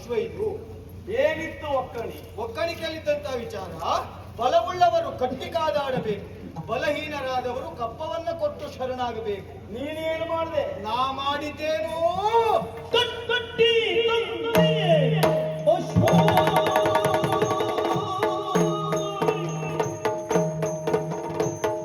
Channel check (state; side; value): identical; both; correlation 1.00